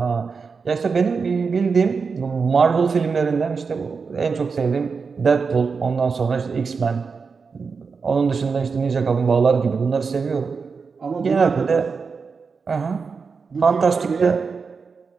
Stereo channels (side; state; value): left; quieter; 5.1 dB